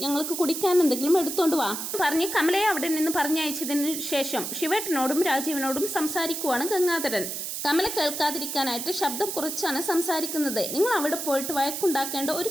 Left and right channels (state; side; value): noise; right; hiss, 5 dB below the sound